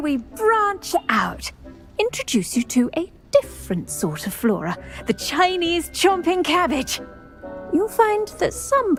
we branch out? Introduce you to a different sort of flora, the Chinese chomping cabbage. You'll find that some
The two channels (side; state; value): both; identical; correlation 1.00